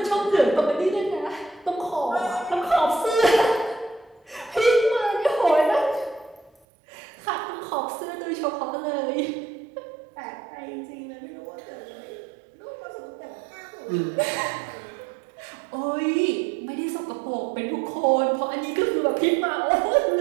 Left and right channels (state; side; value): drops out; left; at 6.5 s